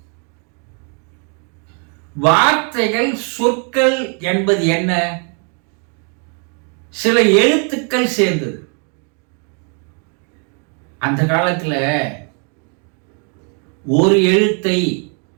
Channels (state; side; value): quieter; left; 39.3 dB